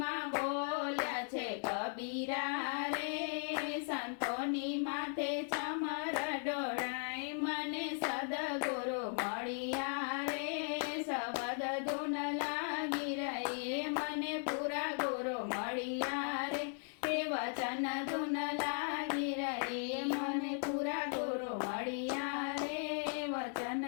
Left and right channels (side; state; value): right; silent; 53 dB below the other